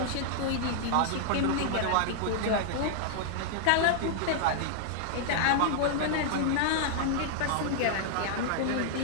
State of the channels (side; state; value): both; different; correlation -0.01